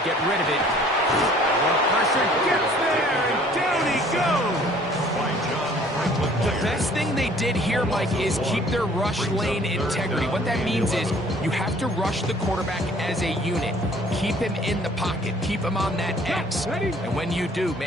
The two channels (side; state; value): both; normal; correlation 0.55